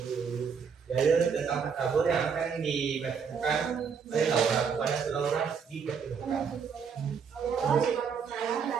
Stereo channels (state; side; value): quieter; left; 6.4 dB